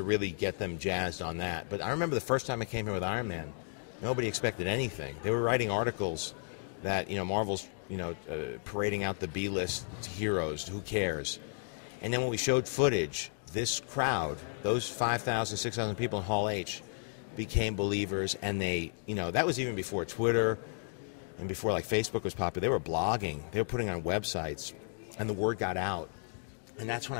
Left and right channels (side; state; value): right; silent; 55 dB below the other